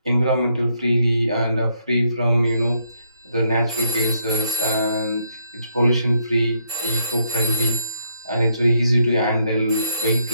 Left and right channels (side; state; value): both; inverted; correlation -0.75